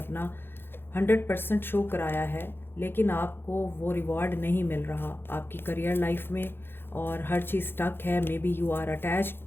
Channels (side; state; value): right; late; 0.10 ms